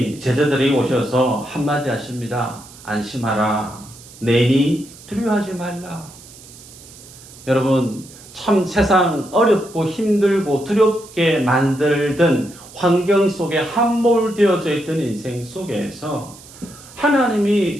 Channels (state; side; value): noise; right; hiss, 20 dB below the sound